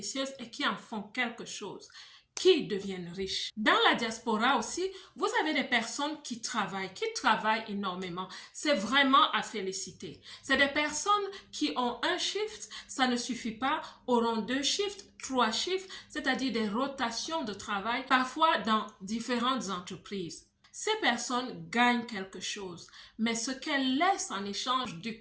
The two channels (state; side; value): identical; both; correlation 1.00